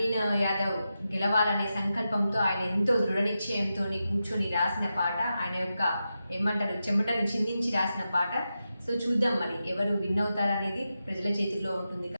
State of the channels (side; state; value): both; inverted; correlation -0.90